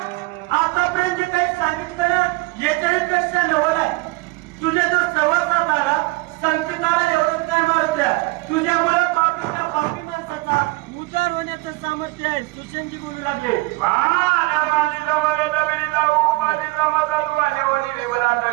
आतापर्यंत जे काही सांगितलं ना याच्यापेक्षा नवल आहे तुझ्या जो सहवासात आला संकटाला एवढंच नाही मारुत्रा तुझ्यामुळे पापीच्या पापी माणसाचा उद्धार होण्याचं सामर्थ्य आहे सुशेंजी बोलू लागले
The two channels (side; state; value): left; quieter; 22.9 dB